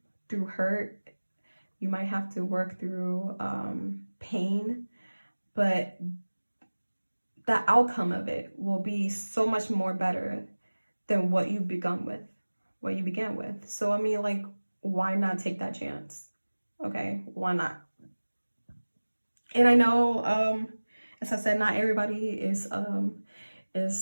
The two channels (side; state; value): both; inverted; correlation -1.00